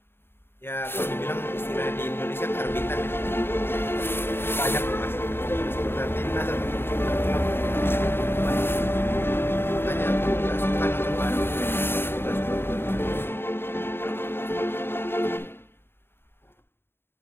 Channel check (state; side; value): late; right; 0.11 ms